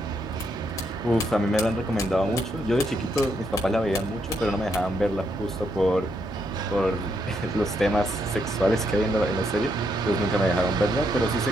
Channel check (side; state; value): both; normal; correlation 0.77